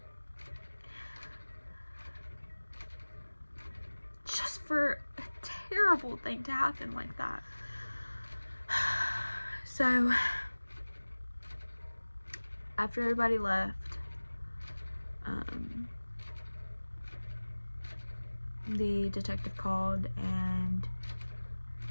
Just for a terrible thing to happen like that. So, after everybody left, the detective called and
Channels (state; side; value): inverted; both; correlation -1.00